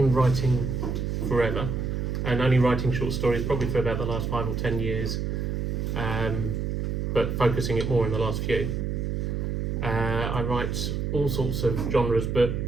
writing forever, and only writing short stories probably for about the last 5 or 10 years, but focusing it more in the last few. I write all sorts of genres, but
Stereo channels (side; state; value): right; noise; hum, 1 dB below the sound